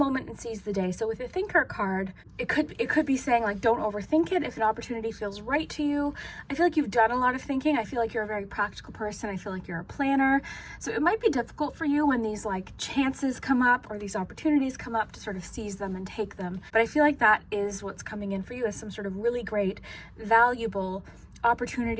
and seize the day. So with the thinker card, it could be saying like don't overthink it. If an opportunity feels right to you, I feel like you've done a lot of thinking. I feel like you're a very practical person. I feel like you're a planner. So it might be difficult for you when these like chances come up or these opportunities come up to sort of seize them and take them. But I feel like that is what's coming in for you, as some sort of really great, valuable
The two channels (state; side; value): identical; both; correlation 1.00